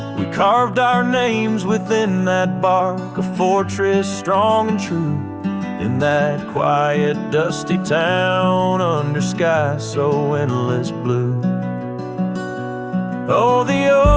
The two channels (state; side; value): identical; both; correlation 1.00